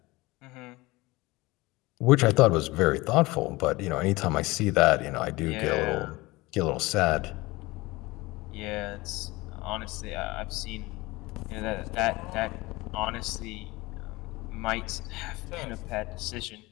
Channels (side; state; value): right; quieter; 21.6 dB